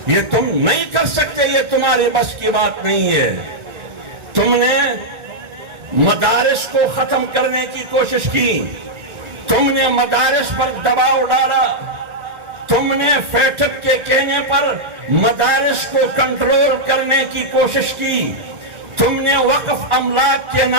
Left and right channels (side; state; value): left; late; 1.4 ms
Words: یہ تم نہیں کر سکتے، یہ تمہاری بس کی بات نہیں ہے۔ تم نے مدارس کو ختم کرنے کی کوشش کی، تم نے مدارس پر دباؤ ڈالا، تم نے فیٹف کے کہنے پر مدارس کو کنٹرول کرنے کی کوشش کی، تم نے وقف املاک کے